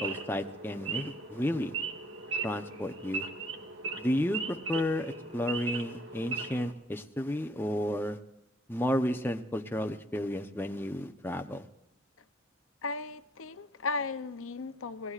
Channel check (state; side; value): normal; both; correlation 0.63